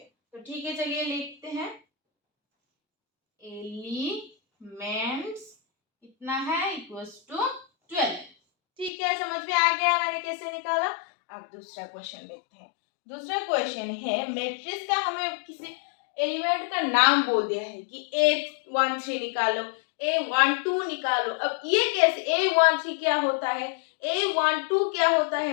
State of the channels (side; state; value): right; drops out; at 8.9 s